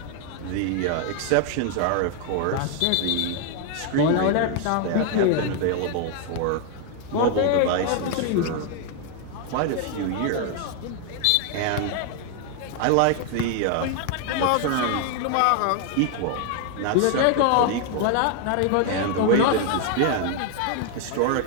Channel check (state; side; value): different; both; correlation 0.00